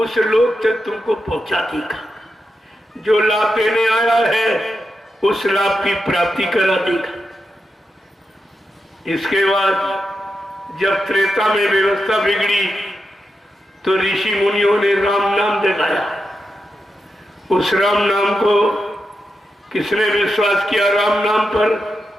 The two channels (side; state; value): both; normal; correlation 0.88